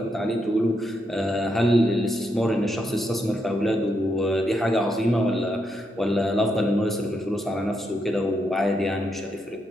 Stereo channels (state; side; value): normal; both; correlation 0.80